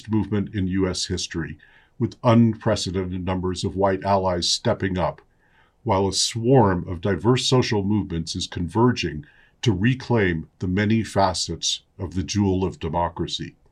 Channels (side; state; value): both; identical; correlation 1.00